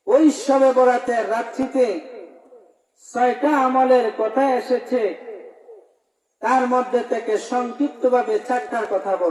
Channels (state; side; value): identical; both; correlation 1.00